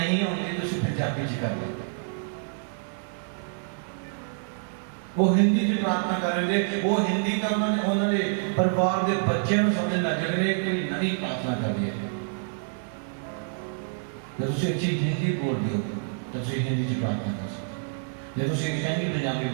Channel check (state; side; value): silent; left; digital silence